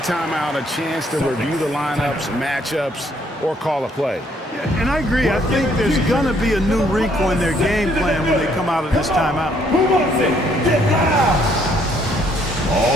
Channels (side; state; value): both; normal; correlation 0.67